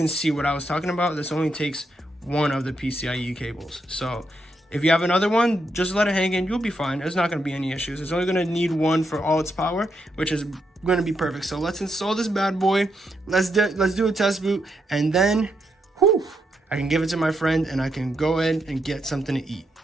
see what I was talking about, this only takes one of the PCIe cables. So if you have another one, just let it hang in, you'll be fine. There's not going to be any issues. It's only going to need one for all its power, which is going to be perfect. So let's install this bad boy. Let's do a test boot, and then whew, I can give it to my friend and I can go ahead and get something to eat.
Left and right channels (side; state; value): both; normal; correlation 0.80